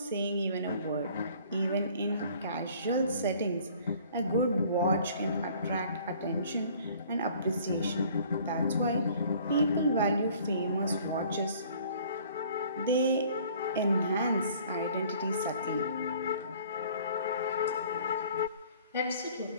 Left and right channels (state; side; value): inverted; both; correlation -0.53